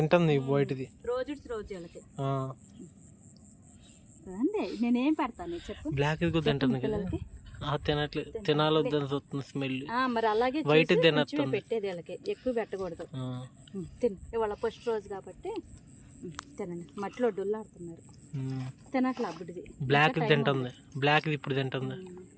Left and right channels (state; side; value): identical; both; correlation 1.00